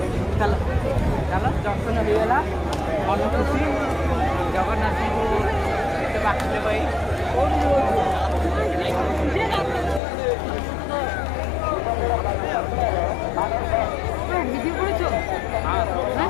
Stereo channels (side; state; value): right; drops out; at 10.0 s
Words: ଚାଲ ଚାଲ ଦର୍ଶନ ହେଇଗଲା ମନ ଖୁସି ଜଗନ୍ନାଥଙ୍କୁ ଏତେ ବାକିଲେ ଭାଇ ভিডিও করেছো হ্যাঁ